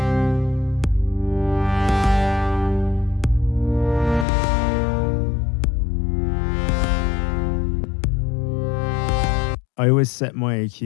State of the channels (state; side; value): drops out; right; at 4.2 s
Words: I always set my